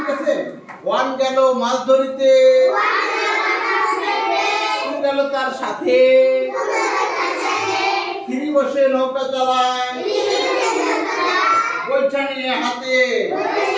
আছে। ওয়ান গেল মাছ ধরিতে, টু গেল তার সাথে, থ্রি বসে নৌকা চালায়, বৈঠা নিয়ে হাতে,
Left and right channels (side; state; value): both; identical; correlation 1.00